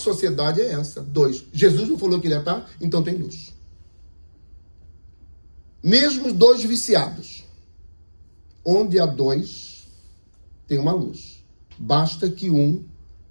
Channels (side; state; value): both; inverted; correlation -1.00